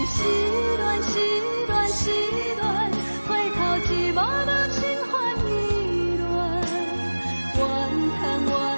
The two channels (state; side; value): inverted; both; correlation -1.00